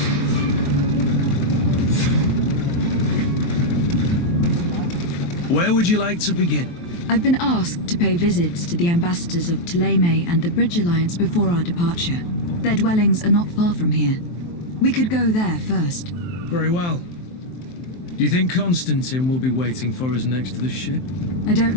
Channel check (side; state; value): right; late; 23 ms